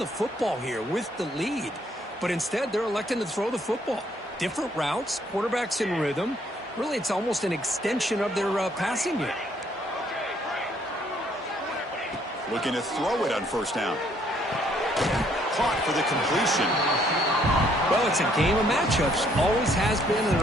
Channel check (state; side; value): normal; both; correlation 0.67